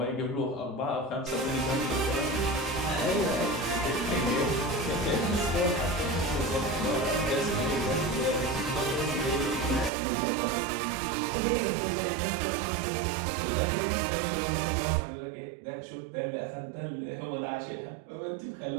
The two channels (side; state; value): left; drops out; at 9.9 s